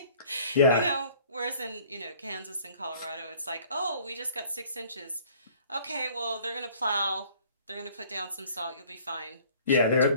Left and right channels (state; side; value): inverted; both; correlation -0.54